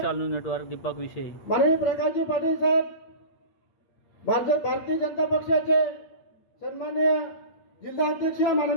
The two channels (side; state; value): right; late; 8.6 ms